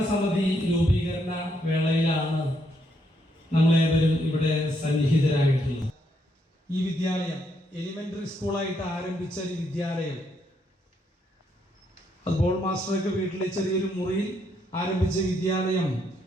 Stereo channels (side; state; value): both; normal; correlation 0.75